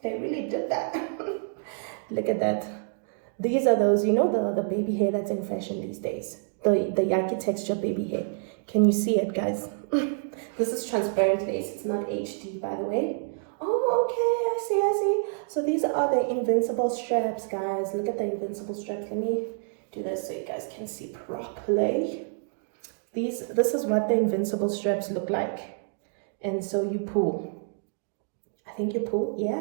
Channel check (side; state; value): left; silent; 60 dB below the other